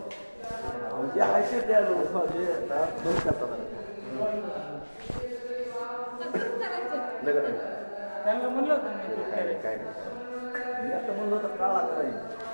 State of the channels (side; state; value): both; inverted; correlation -1.00